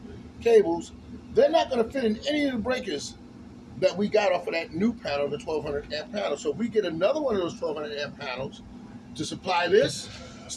cables. They're not going to fit in any of the breakers that we got off of that new panel, the 1200 amp panel. So if we get another one of those 1200 amp panels to supply this, it's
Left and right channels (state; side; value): identical; both; correlation 1.00